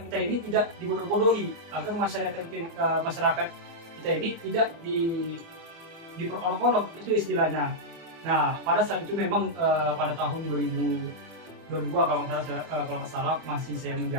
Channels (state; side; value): late; left; 24 ms